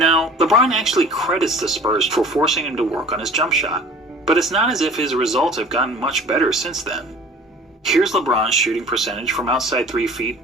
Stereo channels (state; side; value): normal; both; correlation 0.46